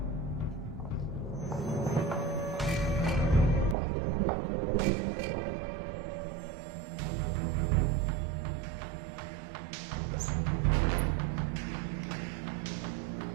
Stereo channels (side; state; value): left; drops out; at 3.8 s